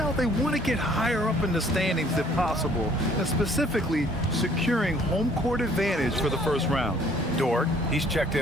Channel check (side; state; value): both; normal; correlation 0.59